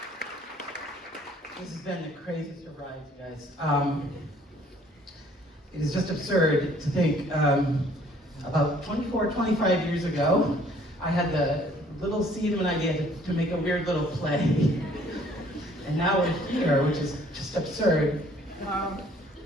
This has been the craziest of rides, you guys. It is just absurd to think about 24, 25 years ago, I had the little seed of an idea to make a weird little play. And now we're here, which is just absurd.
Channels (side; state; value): both; normal; correlation 0.59